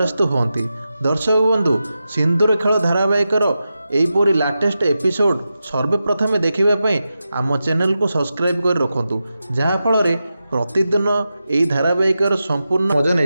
होती। दर्शक बंधु सिंदूर खेल धारावाहिकर यहीपरी लाटेस्ट एपिसोड सर्वप्रथमे देखापी आम चैनल को सब्सक्राइब कर रखु जहाँफल प्रतिदिन यही धारावाहिकर संपूर्ण मजा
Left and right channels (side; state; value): both; inverted; correlation -0.91